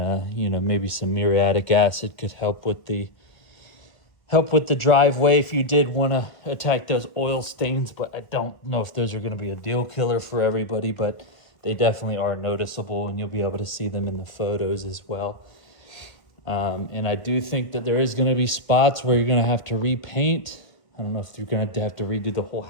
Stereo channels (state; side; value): late; right; 1.7 ms